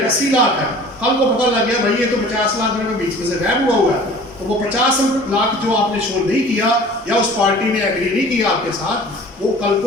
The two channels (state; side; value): normal; both; correlation 0.46